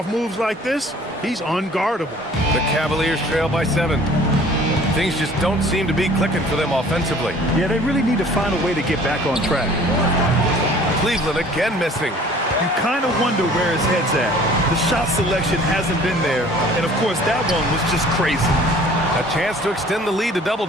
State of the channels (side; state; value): both; normal; correlation 0.51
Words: moves like this, he's unguardable. The Cavaliers trail by 7. Things just don't seem to be clicking for them offensively. Yeah, they really need to find a way to get back on track. Cleveland again missing. You kind of wonder where his head's at. The shot selection hasn't been there, and of course that one was just crazy. A chance to extend the lead to double